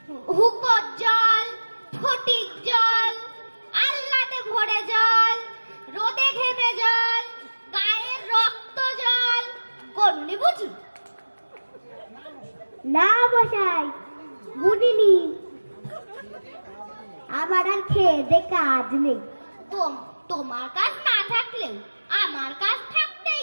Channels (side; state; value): both; inverted; correlation -1.00